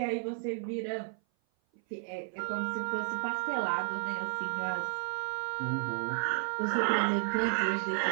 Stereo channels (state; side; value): silent; left; 55 dB below the other